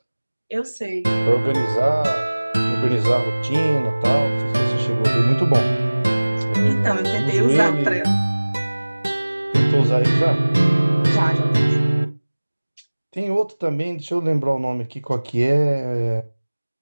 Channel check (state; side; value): inverted; both; correlation -1.00